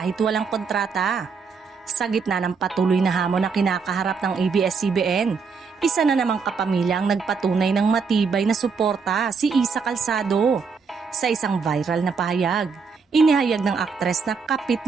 walang kontrata. Sa gitna ng patuloy na hamon na kinakaharap ng ABS-CBN, isa na namang kapamilya ang nagpatunay ng matibay na suporta, si Isa Calzado. Sa isang viral na pahayag, inihayag ng aktres na kapit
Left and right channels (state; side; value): quieter; left; 5.4 dB